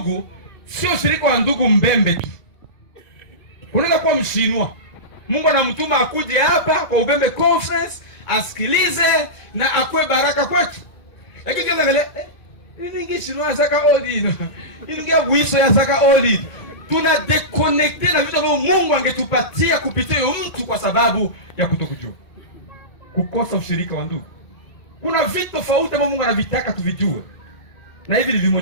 sio ushirika wa ndugu mbembe tu. Unaweza kuwa mshinwa, Mungu anamtuma akuje hapa kwa Ubembe Conference asikilize na akwe baraka kwetu. Lakini kama vile ningi shinwa saka oli. Ingia wiso ya saka oli. Tuna deconnecte na vitu ambavyo Mungu angetupatia kupitia huyo mtu kwa sababu ya kutokujua. Kukosa ushirika wa ndugu. Kuna vitu tofauti ambavyo Mungu anavitaka tuvijue. Na hivi ni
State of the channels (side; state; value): right; late; 1.7 ms